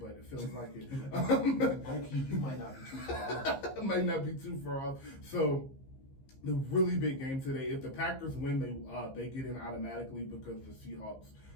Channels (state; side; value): late; right; 15 ms